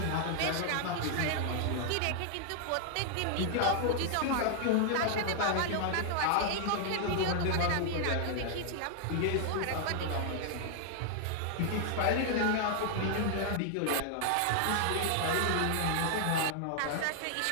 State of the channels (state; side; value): different; both; correlation 0.00